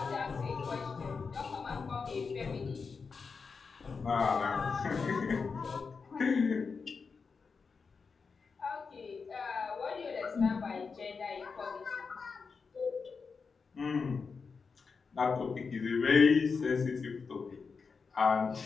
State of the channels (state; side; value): quieter; right; 5.1 dB